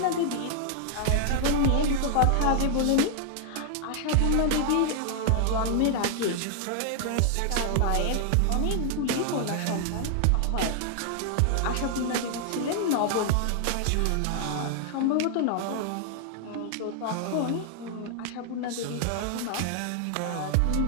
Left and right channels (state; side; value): different; both; correlation 0.00